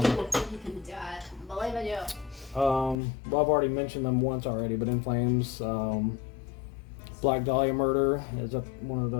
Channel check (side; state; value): right; drops out; at 3.0 s